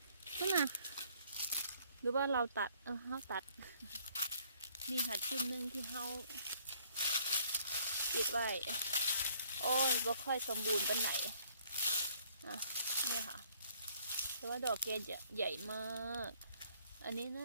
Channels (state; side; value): inverted; both; correlation -0.62